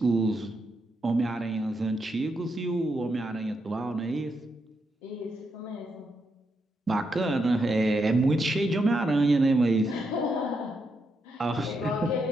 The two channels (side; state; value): both; normal; correlation 0.82